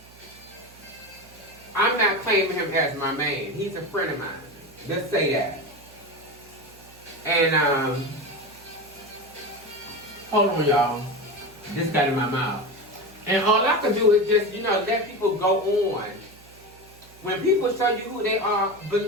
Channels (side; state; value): right; noise; hum, 23 dB below the sound